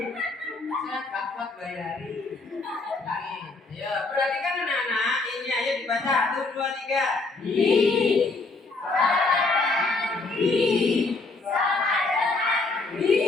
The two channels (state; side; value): quieter; right; 3.6 dB